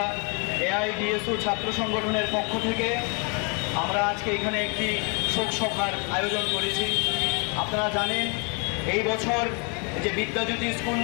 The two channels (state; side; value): quieter; right; 35.2 dB